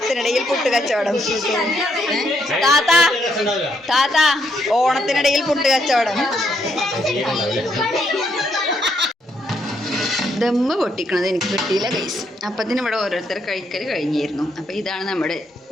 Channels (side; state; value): both; normal; correlation 0.75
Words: പുട്ട് കച്ചവടം. താത്ത ഓണത്തിനിടയിൽ പുട്ട് കച്ചവടം. ദമ്മ് പൊട്ടിക്കണത് എനിക്ക് കിട്ടിയില്ല ഗൈസ്. അപ്പത്തിന് ഇവിടെ ഓരോരുത്തർ കഴിക്കൽ കഴിഞ്ഞിരുന്നു. അപ്പോൾ ഇതാണ് നമ്മുടെ